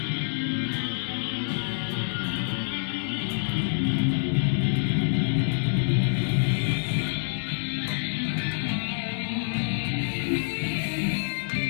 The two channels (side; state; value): right; silent; 60 dB below the other